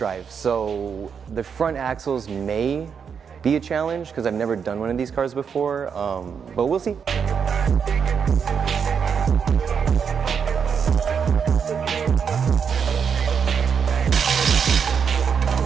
so the front axles may be a challenge because I've never done one of these cars before, but we'll see.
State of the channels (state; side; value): quieter; left; 6.7 dB